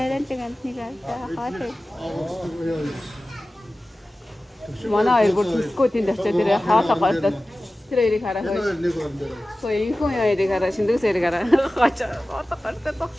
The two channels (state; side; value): normal; both; correlation 0.96